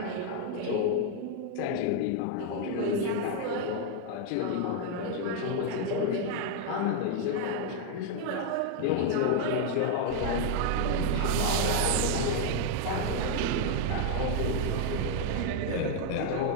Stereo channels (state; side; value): different; both; correlation 0.00